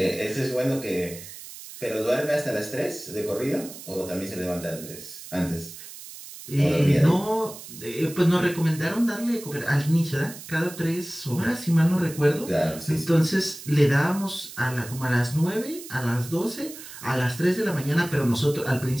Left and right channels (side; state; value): right; noise; hiss, 14 dB below the sound